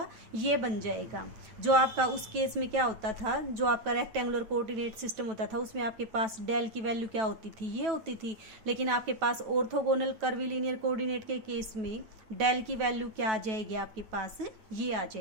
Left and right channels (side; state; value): left; late; 9.2 ms